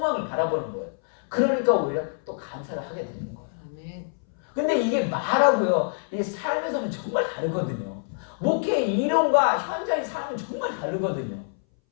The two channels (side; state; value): right; silent; 60 dB below the other